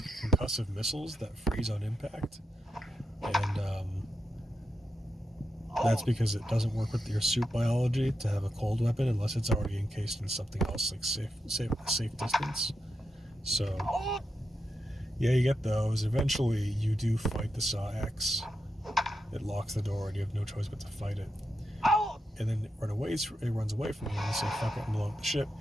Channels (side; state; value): both; normal; correlation 0.86